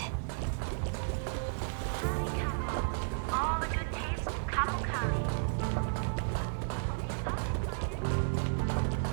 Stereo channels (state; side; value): silent; left; digital silence